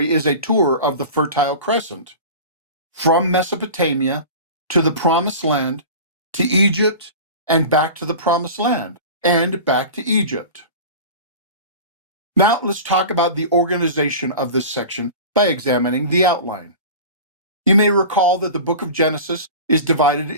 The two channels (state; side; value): inverted; both; correlation -0.34